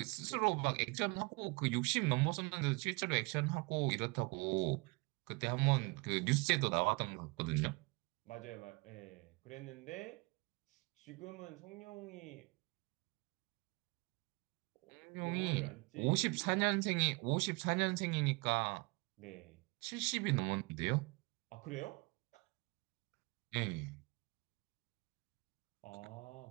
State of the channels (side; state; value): left; quieter; 28.0 dB